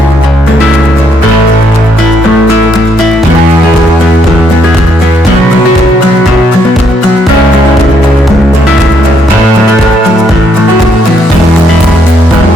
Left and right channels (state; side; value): normal; both; correlation 0.72